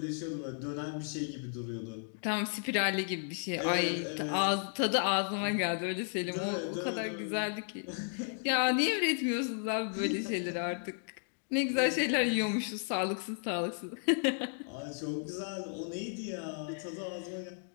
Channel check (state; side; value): silent; right; 55 dB below the other